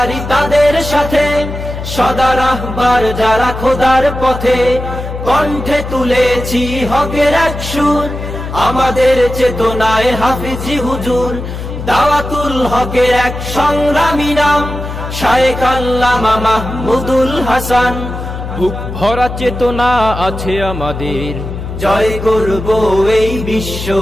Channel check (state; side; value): noise; left; hum, 7 dB below the sound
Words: তাদের সাথে, সদা রাহবার যারা খোদার পথে। কণ্ঠে তুলেছি হকের এক সুর, আমাদের চেতনায় হাফিজি হুজুর। দাওয়াতুল হকের এক সংগ্রামী নাম, শায়েখ আল্লামা মাহমুদুল হাসান। বুক ভরা চেতনা আছে আমাদের, জয় করব এই বিশ্ব,